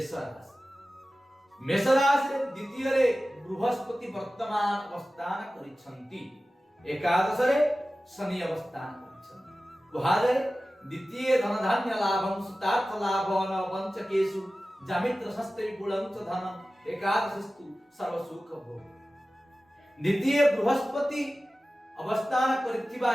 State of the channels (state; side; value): normal; both; correlation 0.95